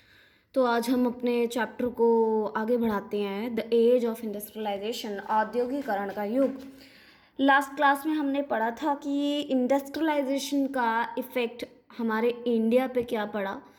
तो आज हम अपने चैप्टर को आगे बढ़ाते हैं, द एज ऑफ इंडस्ट्रियलाइजेशन, औद्योगिकरण का युग। लास्ट क्लास में हमने पढ़ा था कि इंडस्ट्रियलाइजेशन का इफ़ेक्ट हमारे इंडिया पे क्या पड़ा,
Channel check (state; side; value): identical; both; correlation 1.00